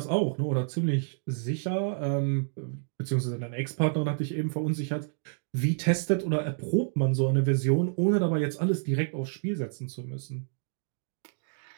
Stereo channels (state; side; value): silent; left; digital silence